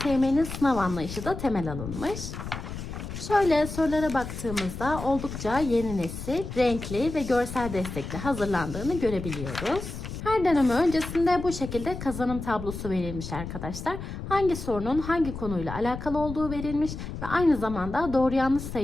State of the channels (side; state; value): left; noise; rumble, 8 dB below the sound